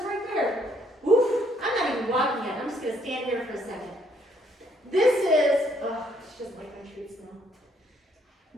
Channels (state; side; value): normal; both; correlation 0.68